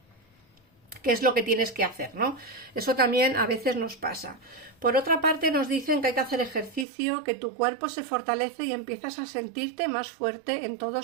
qué es lo que tienes que hacer, ¿no? Eso también a veces nos pasa. Por otra parte, nos dicen que hay que hacer ejercicio, que tu cuerpo se fortalece y empiezas a sentirte más fuerte en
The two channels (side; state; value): left; drops out; at 6.9 s